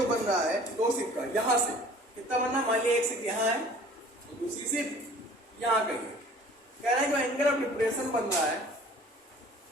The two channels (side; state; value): both; normal; correlation 0.49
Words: बन रहा है दो शिप का, यहां से कितना बनना, मान लिया एक शिप यहाँ है और दूसरी शिप यहाँ कहीं है। कह रहा है जो एंगल ऑफ डिप्रेशन बन रहा है